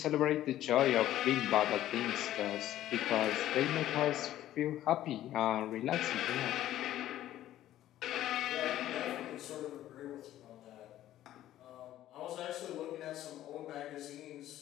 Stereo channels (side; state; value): right; quieter; 13.2 dB